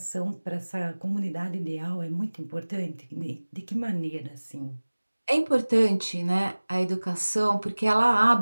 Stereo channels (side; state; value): both; inverted; correlation -1.00